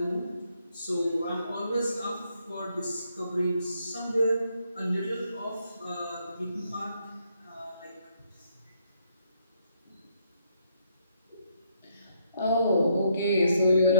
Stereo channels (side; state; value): both; inverted; correlation -0.74